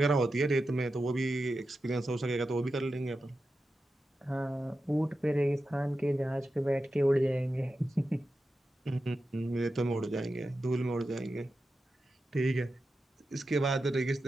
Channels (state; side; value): normal; both; correlation 0.91